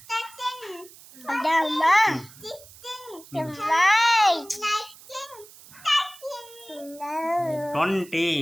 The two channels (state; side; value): noise; right; hiss, 21 dB below the sound